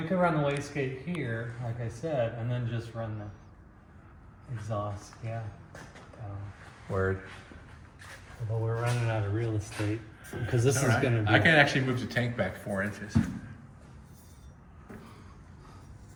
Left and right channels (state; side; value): identical; both; correlation 1.00